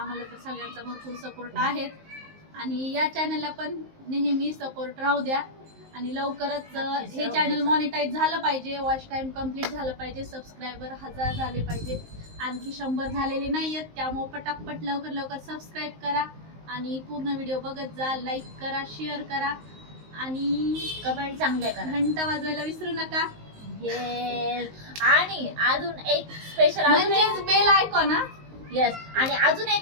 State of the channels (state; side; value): late; left; 19 ms